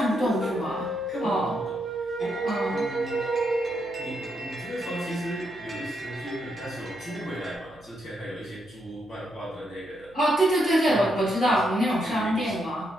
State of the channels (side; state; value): right; noise; hum, 26 dB below the sound